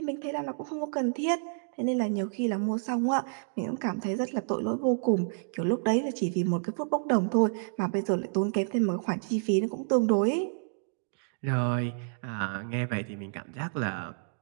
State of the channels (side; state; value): left; silent; digital silence